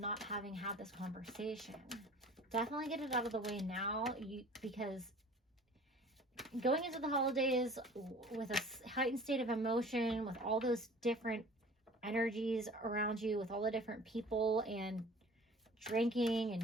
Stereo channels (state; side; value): normal; both; correlation 0.46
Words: having had this conversation. Definitely get it out of the way now, because going into the holidays with a heightened state of emotion, with all those different energies around you, with all the different people and drinking